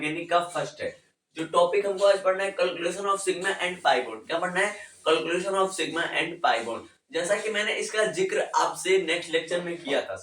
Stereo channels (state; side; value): identical; both; correlation 1.00